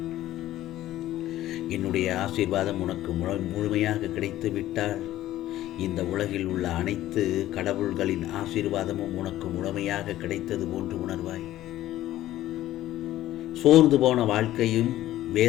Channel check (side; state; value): right; quieter; 14.2 dB